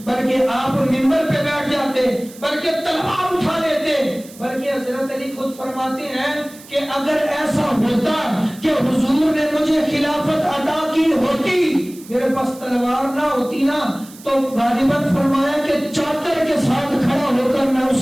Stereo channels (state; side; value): noise; right; hiss, 20 dB below the sound